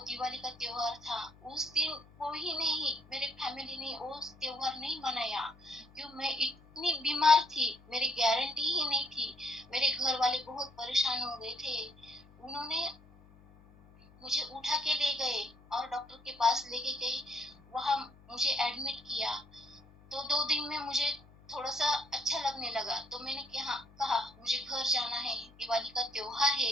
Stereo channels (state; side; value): noise; left; hum, 25 dB below the sound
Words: दिवाली का त्योहार था, उस दिन कोई नहीं, मेरे फैमिली ने वो त्योहार नहीं मनाया। क्यों? मैं इतनी बीमार थी, मेरी गारंटी ही नहीं थी। मेरे घर वाले बहुत परेशान हो गए थे। उन्होंने मुझे उठा के ले गए और डॉक्टर के पास लेके गए, वहां मुझे एडमिट किया। तो 2 दिन में मुझे थोड़ा सा अच्छा लगने लगा, तो मैंने कहा मुझे घर जाना है, दिवाली का त्योहार है,